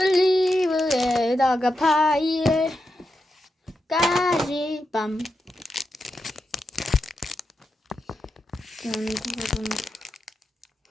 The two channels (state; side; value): normal; both; correlation 0.87